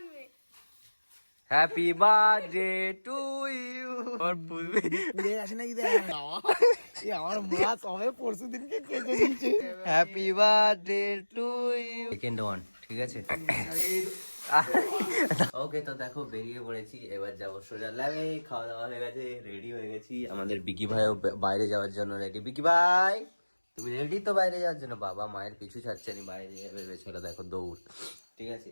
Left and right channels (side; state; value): both; inverted; correlation -1.00